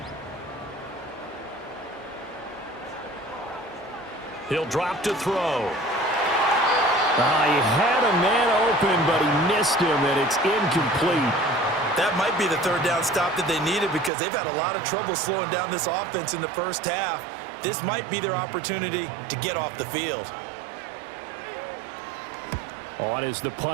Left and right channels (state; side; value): drops out; left; at 14.1 s